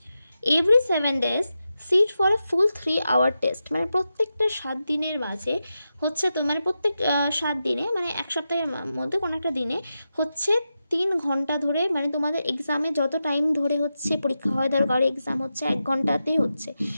Every 7 days sit for a full 3 hour test. মানে প্রত্যেকটা 7 দিনের মাঝে হচ্ছে তোমার প্রত্যেক 7 দিনে, মানে এক সপ্তাহের মধ্যে কোনো একটা দিনে হচ্ছে 3 ঘন্টা ধরে, মানে তোমাদের এক্সামে যত টাইম ধরে হচ্ছে পরীক্ষা হয়, ধরো কারোর এক্সাম হচ্ছে 1 ঘন্টাতেই হচ্ছে,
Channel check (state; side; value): inverted; both; correlation -0.90